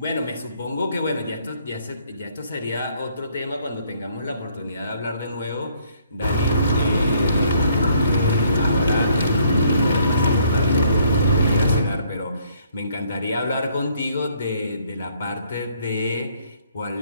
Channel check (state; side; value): inverted; both; correlation -0.65